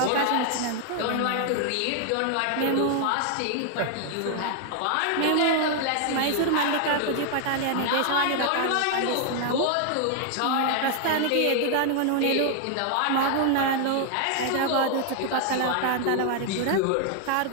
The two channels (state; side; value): different; both; correlation 0.00